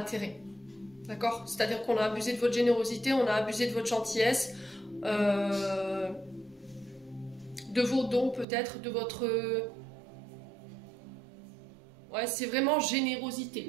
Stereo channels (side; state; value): left; drops out; at 8.5 s